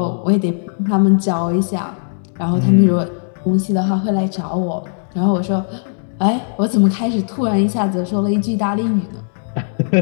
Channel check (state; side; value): silent; right; digital silence